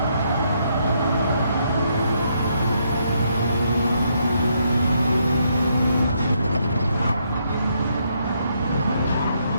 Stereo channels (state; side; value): inverted; both; correlation -0.75